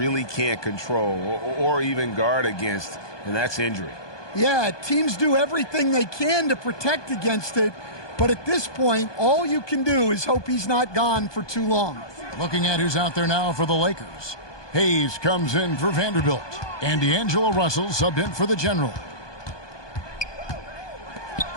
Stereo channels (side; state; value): right; late; 1.2 ms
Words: can't control or even guard against, and that's injury. Yeah, teams do everything they can to protect against it, but at this point, all you can do is hope he's not gone for too long. Looking at who's out there now for the Lakers. Hayes comes in for Vanderbilt, and D'Angelo Russell subbed in for the General.